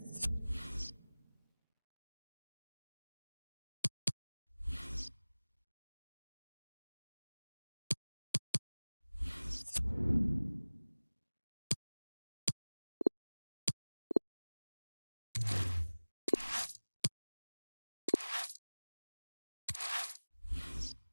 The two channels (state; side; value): inverted; both; correlation -1.00